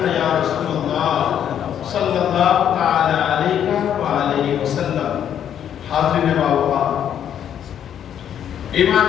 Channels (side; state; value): right; quieter; 9.5 dB